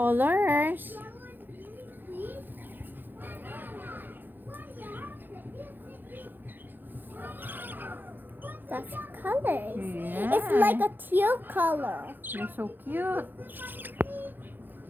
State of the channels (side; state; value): left; late; 0.091 ms